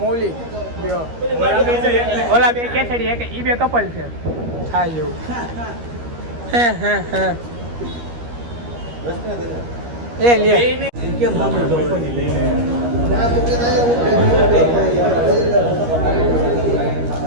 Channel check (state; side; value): late; left; 13 ms